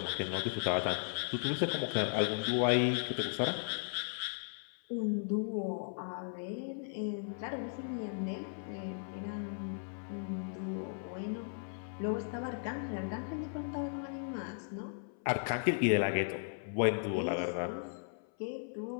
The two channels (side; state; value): right; silent; 53 dB below the other